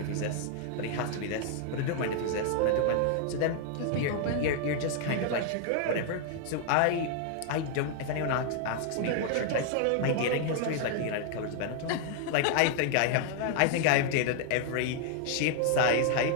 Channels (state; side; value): different; both; correlation 0.00